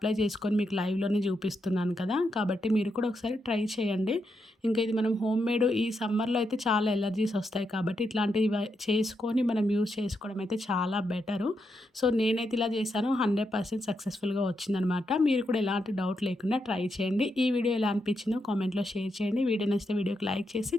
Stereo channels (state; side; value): normal; both; correlation 0.83